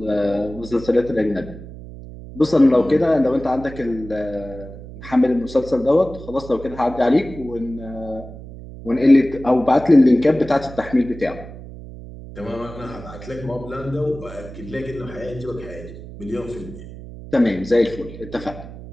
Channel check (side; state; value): right; noise; hum, 14 dB below the sound